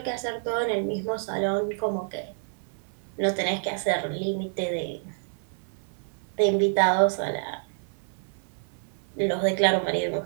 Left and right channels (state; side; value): silent; left; digital silence